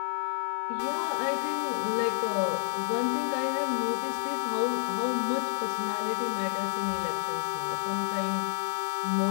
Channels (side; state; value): right; silent; 58 dB below the other